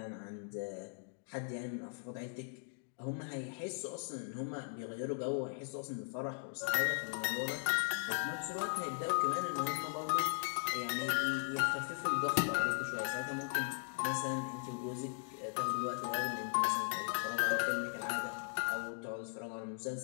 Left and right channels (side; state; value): right; silent; 52 dB below the other